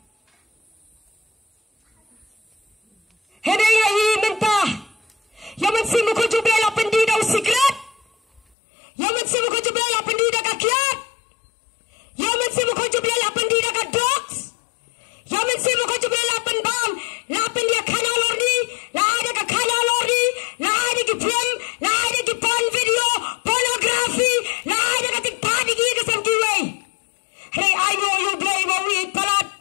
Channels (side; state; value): right; drops out; at 8.4 s